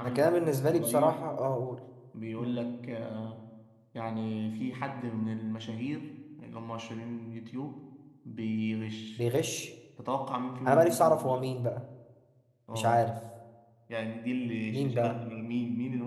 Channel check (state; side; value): identical; both; correlation 1.00